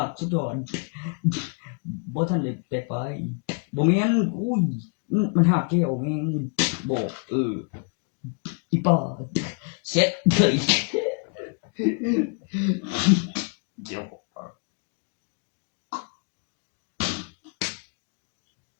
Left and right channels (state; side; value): quieter; right; 39.6 dB